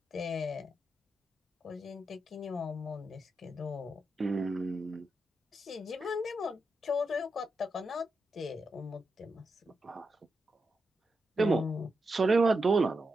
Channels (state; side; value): normal; both; correlation 0.86